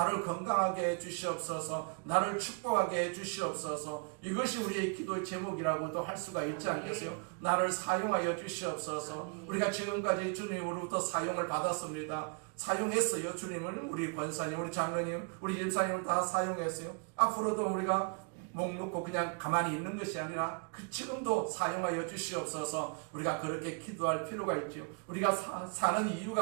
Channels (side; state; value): left; quieter; 39.8 dB